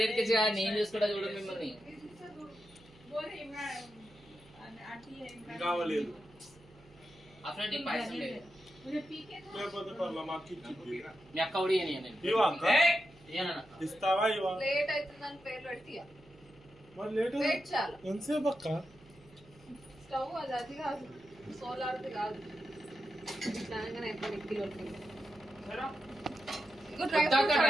ఎక్కించి నేను చూసుకుంటా చూడండి మిమ్మల్ని बोले इमरान కావలేదు అసలు పైసలు లేదు లేకపోతే పర్లా మాకు ఇచ్చింది మీ అక్క కూడా ఇయ్యను నేను ఇవా అక్క ఇయ్యనన్నా ఇస్తావా ఇవా లేట్ అవుతుందని పేరు పెడితే మరి లేట్ వెయిట్ చాలు ఎంతసేపు అక్క స్టవ్ అది కాదు సోలార్ది కాదు దానిగానే ఎప్పుడు కిలో ఇగో డ్రై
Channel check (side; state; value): right; noise; hum, 25 dB below the sound